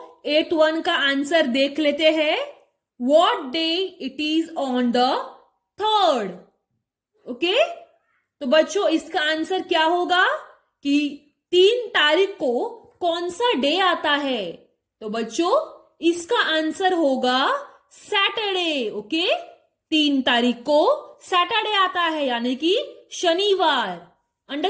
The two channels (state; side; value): identical; both; correlation 1.00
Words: 8th वन का आंसर देख लेते हैं। What day it is on the 3rd? Okay, तो बच्चों इसका आंसर क्या होगा कि 3 तारीख को कौन सा डे आता है? तो बच्चों इसका आंसर होगा सैटरडे। ओके, 3 तारीख को सैटरडे आता है, यानी कि शनिवार।